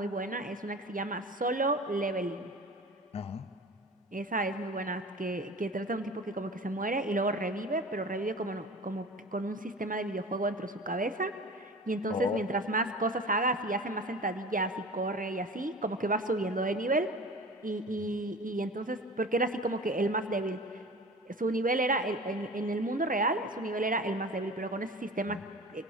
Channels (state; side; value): normal; both; correlation 0.37